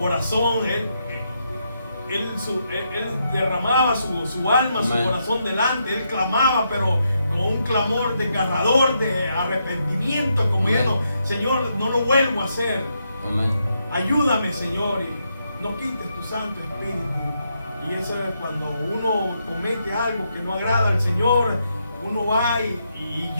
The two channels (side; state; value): both; inverted; correlation -0.80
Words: él derramaba su alma, su corazón delante, él clamaba, pero con un clamor desgarrador de arrepentimiento, como diciendo: Señor, no lo vuelvo a hacer. Amén. Ayúdame, Señor, y no quites tu Santo Espíritu. Y eso es cuando uno comete algo que no agrada al Señor, uno va y